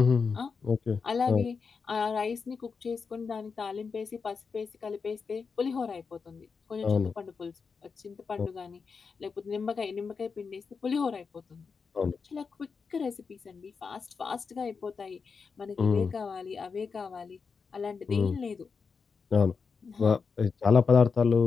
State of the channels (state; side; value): quieter; right; 5.3 dB